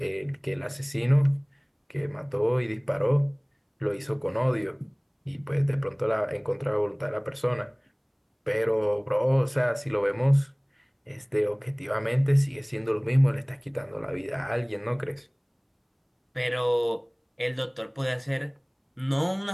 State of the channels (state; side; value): identical; both; correlation 1.00